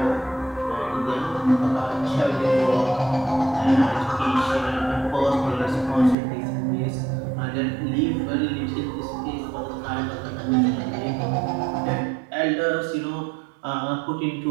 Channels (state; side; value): drops out; left; at 6.2 s